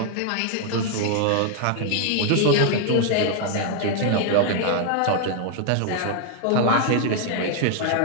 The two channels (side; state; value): both; different; correlation 0.00